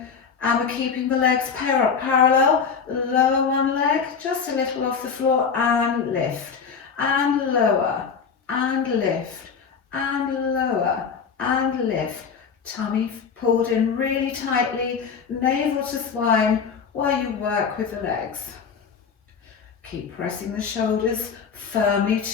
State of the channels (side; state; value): right; quieter; 6.1 dB